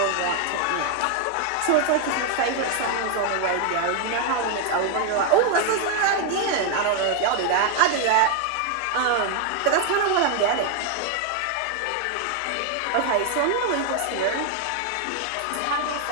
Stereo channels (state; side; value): different; both; correlation 0.00